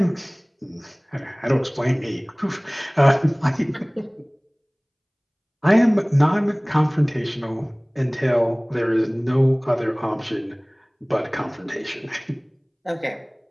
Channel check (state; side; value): identical; both; correlation 1.00